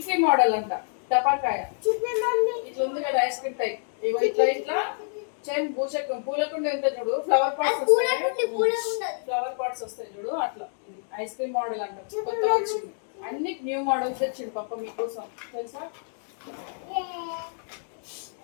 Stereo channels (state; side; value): silent; right; digital silence